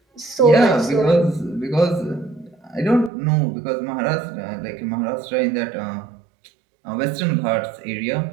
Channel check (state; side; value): drops out; left; at 3.1 s